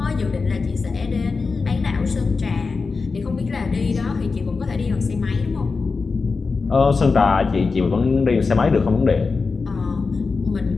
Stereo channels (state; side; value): quieter; right; 4.4 dB